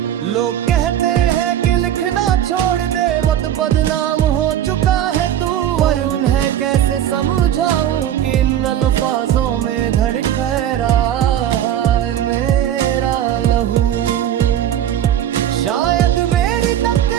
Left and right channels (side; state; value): left; quieter; 10.9 dB